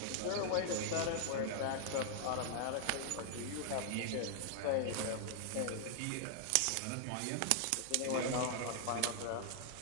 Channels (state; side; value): different; both; correlation 0.00